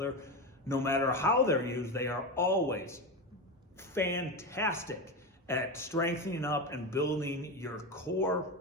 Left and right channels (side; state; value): both; normal; correlation 0.18